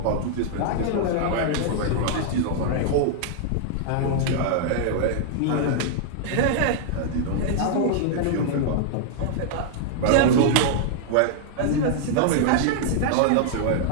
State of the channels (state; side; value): different; both; correlation -0.01